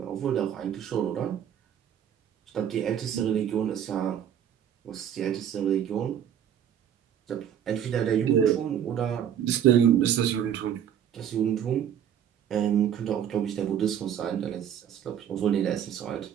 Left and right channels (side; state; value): left; quieter; 9.4 dB